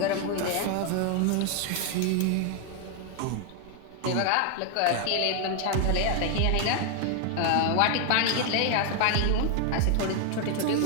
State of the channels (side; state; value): both; different; correlation 0.00